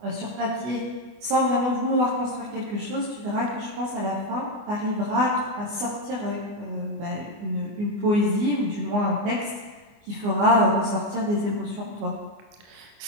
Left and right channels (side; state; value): left; late; 24 ms